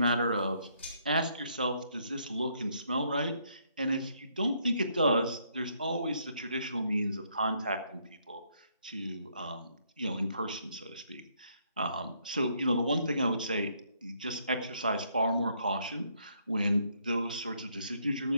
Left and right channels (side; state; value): both; inverted; correlation -0.71